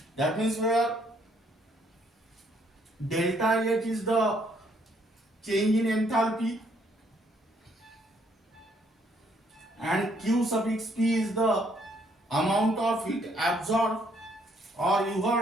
That means where delta H is the change in enthalpy and Q suffix P is the amount of heat absorbed or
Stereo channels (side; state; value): both; normal; correlation 0.68